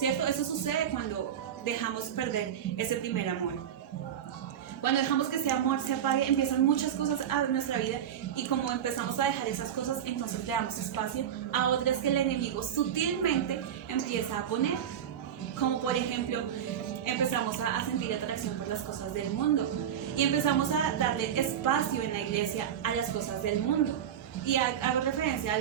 Eso sucede cuando dejamos perder ese primer amor. Cuando dejamos que ese amor se apague, empiezan muchas cosas a nuestra vida y como empezamos a dejar esas cosas, entonces le damos espacio a otras que el enemigo sutilmente empieza a poner. Como por ejemplo, empezamos a sentir atracción por las cosas del mundo y empezamos a darle espacio en la iglesia a las cosas del mundo. Y hago referencia a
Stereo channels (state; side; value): quieter; left; 9.4 dB